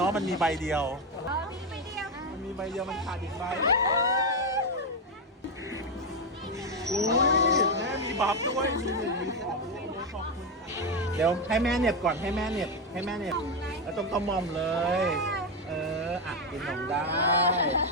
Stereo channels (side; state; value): both; normal; correlation 0.08